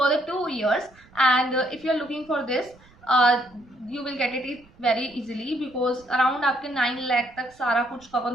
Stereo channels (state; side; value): noise; right; rumble, 28 dB below the sound